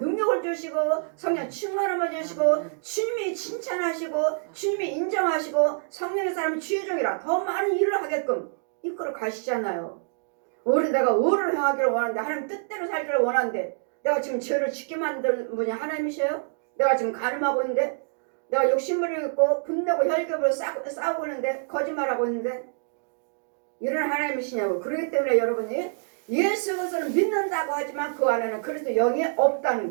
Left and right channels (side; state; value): left; silent; digital silence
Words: 주시고 성령 충만함을 주시고 주님이 칭찬하시고 주님이 인정하시고 성령의 사람이 주의 종이라 더 많은 일을 하게끔 이끌어 가시잖아요. 내가 의를 행하기를 원하는데 하나님 뜻대로 살기를 원하는데 내가 지금 죄를 짓게 만든 분이 하나님이셔요? 내가 지금 가늠하고 있는데 내가 욕심부리고 있고 분내고 혈ገብ으로 싸우고 있는데 거짓말하고 있는데 이런 하나님이시냐고. 그렇기 때문에 여러분이 예수 그리스도를 믿는다고 하지만 그 안에는 그리스도 영이 없다는